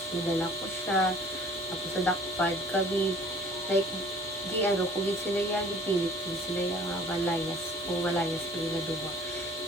dinala ko siya. Tapos nadakpad kami. Like, kung sila yan, ipilit kung sila yung malayas. Kung malayas kami na duwa.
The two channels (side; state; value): both; normal; correlation 0.51